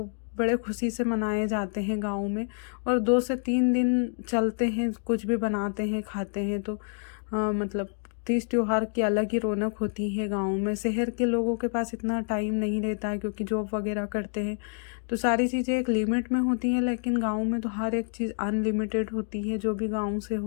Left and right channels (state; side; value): silent; right; 58 dB below the other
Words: बड़े खुशी से मनाए जाते हैं गाँव में। और 2 से 3 दिन चलते हैं, कुछ भी बनाते हैं, खाते हैं। तो मतलब तीज त्योहार की अलग ही रौनक होती है गाँव में। शहर के लोगों के पास इतना टाइम नहीं रहता है, क्योंकि जॉब वगैरह करते हैं, तो सारी चीज़ें एक लिमिट में होती हैं। लेकिन गाँव में तो हर एक चीज़ अनलिमिटेड होती है। जो भी गाँव से